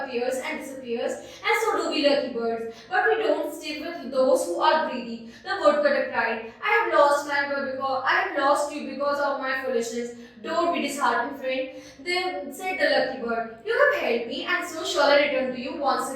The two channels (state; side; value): identical; both; correlation 1.00